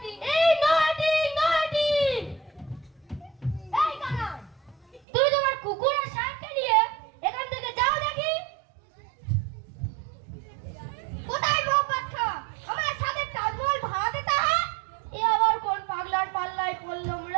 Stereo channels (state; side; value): drops out; left; at 5.0 s